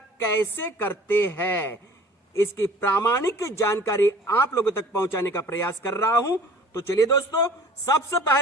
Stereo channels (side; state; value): both; normal; correlation 0.47